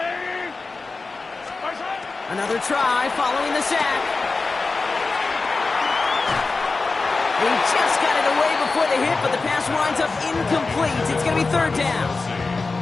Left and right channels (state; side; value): quieter; right; 3.9 dB